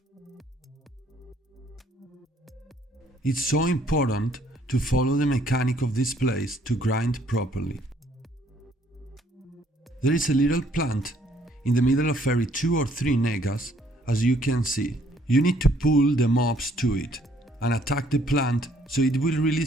It's so important to follow the mechanic of this place to grind properly. There is a little plant in the middle of every 2 or 3 Nagas, as you can see. You need to pull the mobs to it and attack the plant so it will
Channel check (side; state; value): both; normal; correlation 0.64